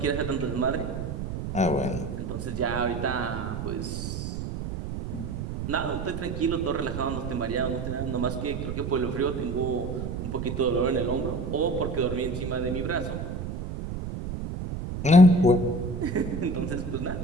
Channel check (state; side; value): noise; right; rumble, 5 dB below the sound